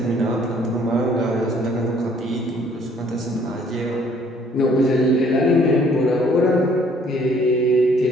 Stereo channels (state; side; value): normal; both; correlation 0.60